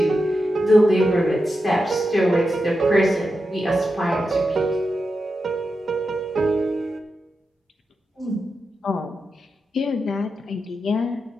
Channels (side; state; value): both; normal; correlation 0.89